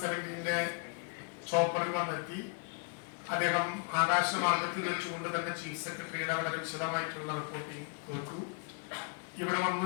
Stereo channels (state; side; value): quieter; right; 38.6 dB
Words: ചോപ്പറിൽ വന്നെത്തി അദ്ദേഹം ആകാശമാർഗത്തിൽ വെച്ചുകൊണ്ട് തന്നെ ചീഫ് സെക്രട്ടറിയുടെ വളരെ വിശദമായിട്ടുള്ള റിപ്പോർട്ടിംഗ് കേട്ടു. ഇവിടെ